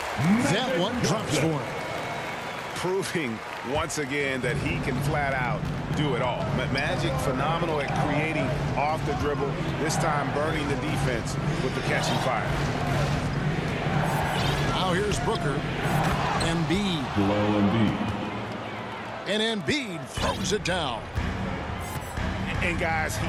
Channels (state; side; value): identical; both; correlation 1.00